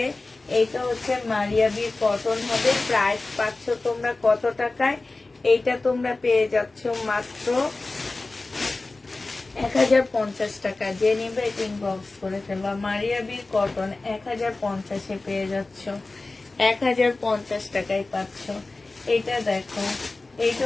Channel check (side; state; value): right; quieter; 3.3 dB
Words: এইটা হচ্ছে মারিয়াবির কটন হবে। প্রাইস পাচ্ছ তোমরা কত টাকায়? এইটা তোমরা পেয়ে যাচ্ছ মাত্র 1050 টাকা। যে নিবে ইনবক্স করে ফেলবা। মারিয়াবির কটন 1050-এ পেয়ে যাচ্ছ, 1050 টাকায় পাচ্ছ। এটা দেখো,